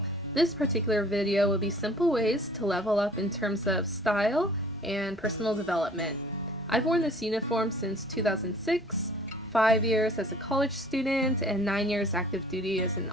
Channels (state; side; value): normal; both; correlation 0.51